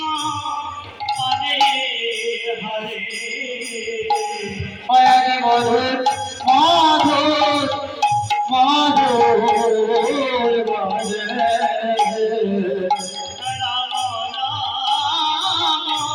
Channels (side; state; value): both; identical; correlation 1.00